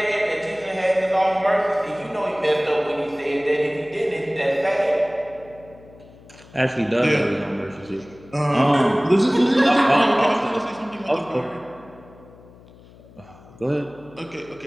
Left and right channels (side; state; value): left; noise; hum, 23 dB below the sound